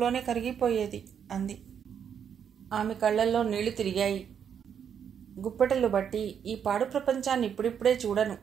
కరిగిపోయేది అంది. ఆమె కళ్లల్లో నీళ్లు తిరిగాయి. గుప్పెటలు బట్టి ఈ పాడు ప్రపంచాన్ని ఇప్పుడిప్పుడే చూడను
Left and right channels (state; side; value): quieter; left; 8.0 dB